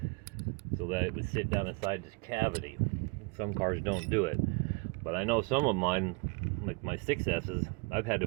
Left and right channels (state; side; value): quieter; left; 28.6 dB